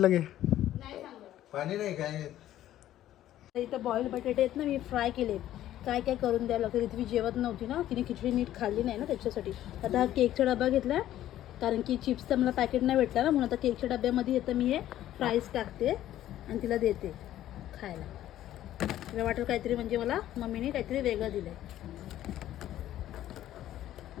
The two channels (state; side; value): quieter; right; 12.9 dB